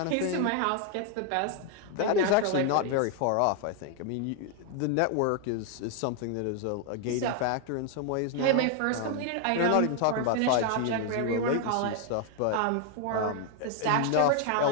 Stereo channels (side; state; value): both; different; correlation 0.00